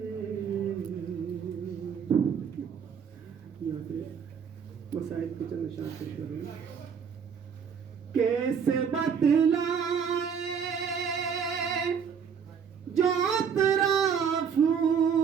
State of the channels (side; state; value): left; quieter; 7.0 dB